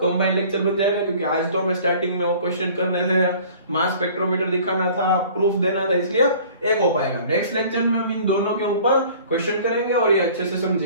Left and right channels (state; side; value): inverted; both; correlation -0.49